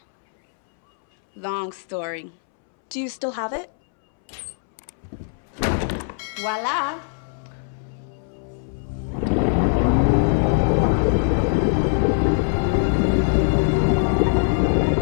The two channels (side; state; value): right; silent; 64 dB below the other